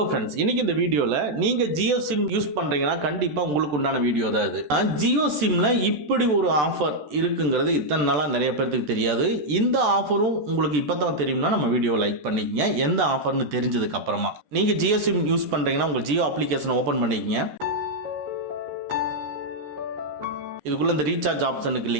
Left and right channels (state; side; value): late; left; 14 ms